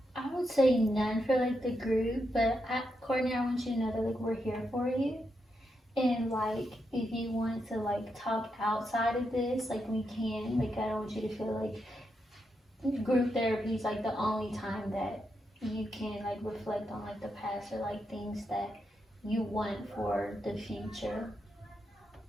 I would say none for like the group, but Courtney, I want you to know that like we're here for you. And like if you want to like talk outside of this, like we can. Like I don't want you to feel like group therapy is like the only time that you can like reflect on like the past or like things that you want for the future.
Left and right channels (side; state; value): both; normal; correlation 0.83